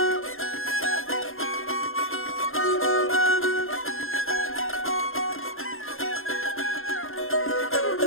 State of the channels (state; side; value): late; right; 0.60 ms